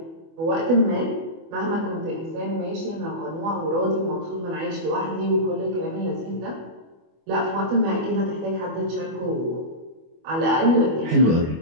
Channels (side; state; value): left; late; 25 ms